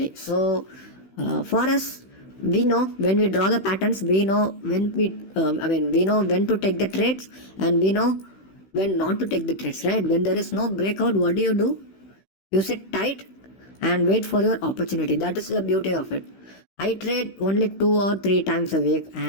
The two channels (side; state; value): right; late; 16 ms